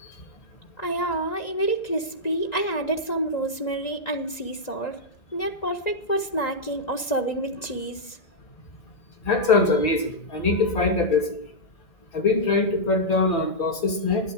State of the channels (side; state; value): right; late; 2.0 ms